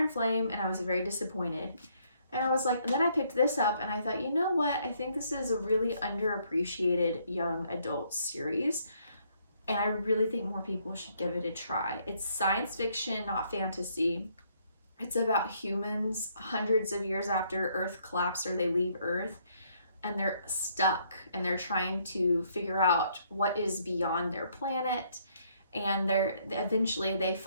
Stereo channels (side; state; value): both; inverted; correlation -0.69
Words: Flame and I was very disappointed. And I was like, and then I picked this up and I thought, you know what? I think this is a really underappreciated young adult series. And I really think more people should give it a try. It's science fiction, not fantasy. It's about humans hundreds of years after Earth collapsed, or they leave Earth, and they're stuck and they're trying to figure out what is beyond their planet. And eventually they